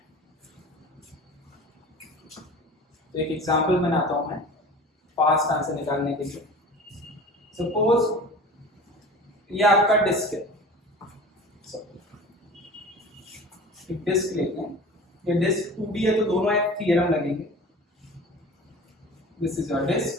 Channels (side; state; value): both; normal; correlation 0.39